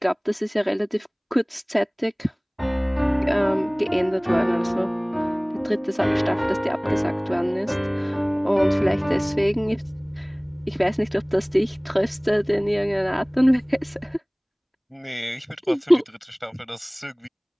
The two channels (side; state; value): both; identical; correlation 1.00